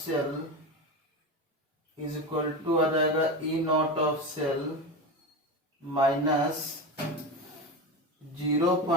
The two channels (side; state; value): both; normal; correlation 0.21